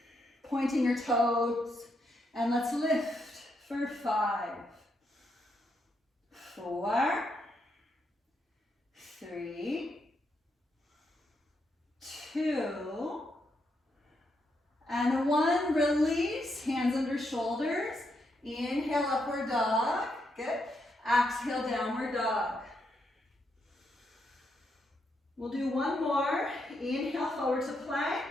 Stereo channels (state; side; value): normal; both; correlation 0.80